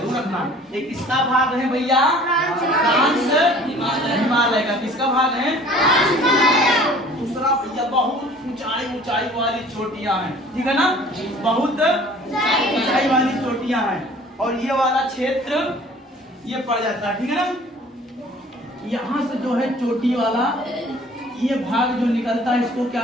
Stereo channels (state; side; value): normal; both; correlation 0.50